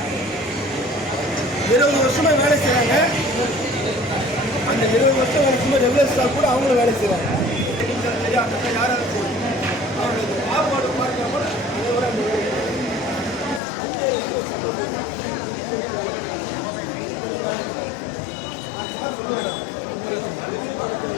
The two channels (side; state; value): right; drops out; at 13.6 s